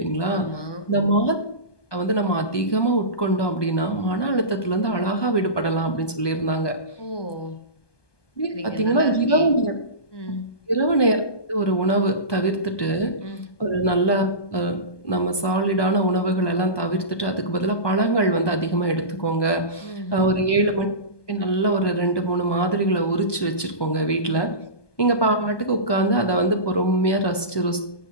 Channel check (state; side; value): late; right; 1.2 ms